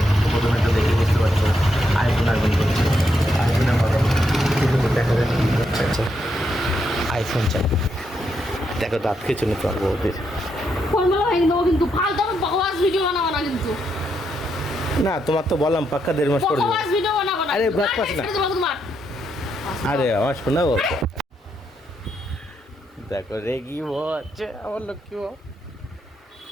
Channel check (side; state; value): both; normal; correlation 0.79